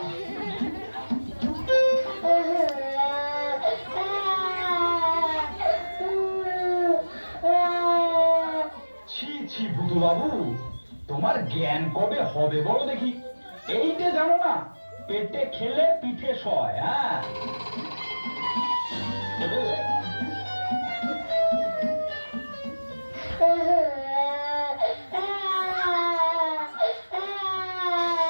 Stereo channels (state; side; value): inverted; both; correlation -1.00